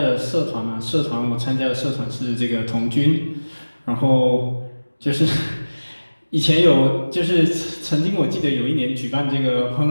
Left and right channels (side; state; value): both; inverted; correlation -1.00